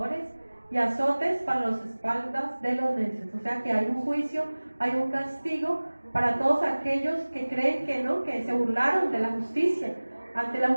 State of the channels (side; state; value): both; inverted; correlation -1.00